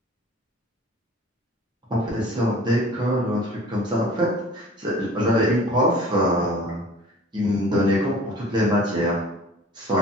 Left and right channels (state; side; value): normal; both; correlation 0.46